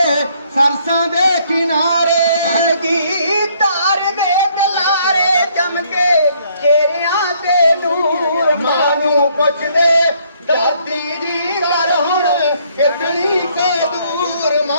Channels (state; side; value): inverted; both; correlation -0.66